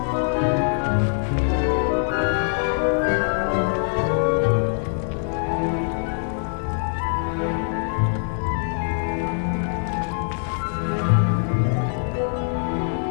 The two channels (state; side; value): silent; right; 63 dB below the other